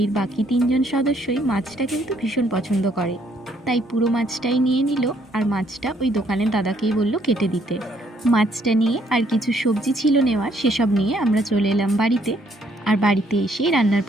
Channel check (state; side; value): normal; both; correlation 0.68